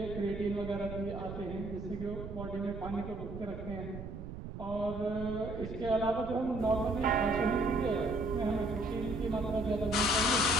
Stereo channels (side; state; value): right; noise; rumble, 9 dB below the sound